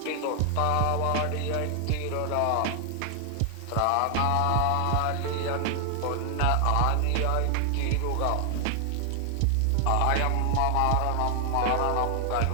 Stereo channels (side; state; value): both; different; correlation 0.00